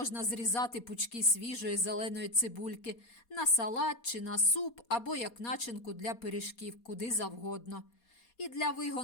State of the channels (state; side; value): late; right; 4.2 ms